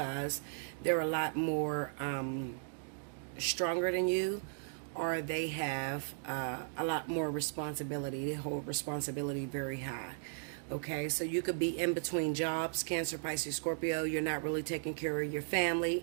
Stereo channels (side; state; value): left; silent; digital silence